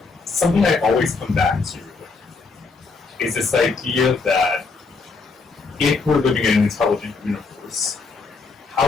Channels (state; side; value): quieter; right; 4.3 dB